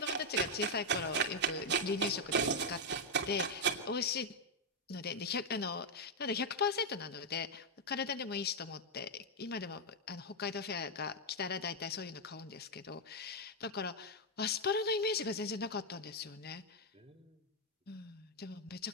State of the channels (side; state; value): both; normal; correlation 0.00